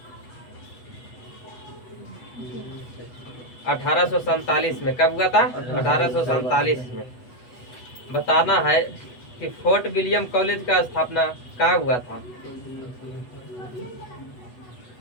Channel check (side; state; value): right; late; 8.2 ms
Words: 1847 में। कब हुआ था? 1847 में। बताना है कि फोर्ट विलियम कॉलेज का स्थापना कहाँ हुआ था?